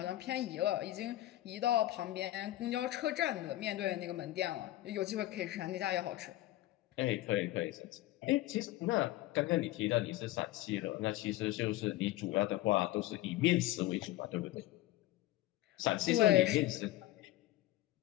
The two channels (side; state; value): right; quieter; 16.1 dB